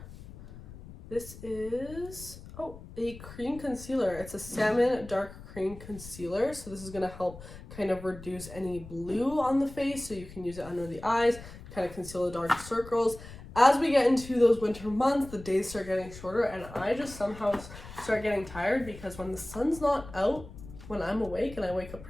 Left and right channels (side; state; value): left; noise; rumble, 15 dB below the sound